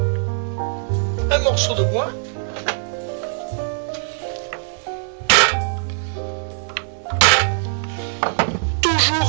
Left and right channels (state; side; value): silent; left; 62 dB below the other